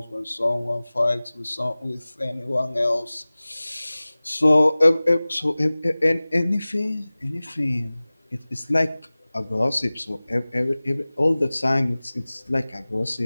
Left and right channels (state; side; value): inverted; both; correlation -0.99